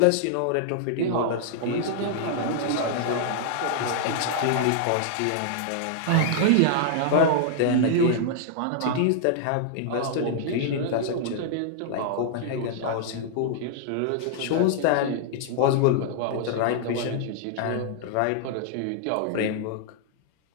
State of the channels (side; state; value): both; different; correlation -0.01